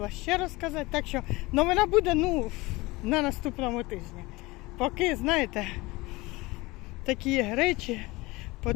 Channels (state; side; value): quieter; right; 22.1 dB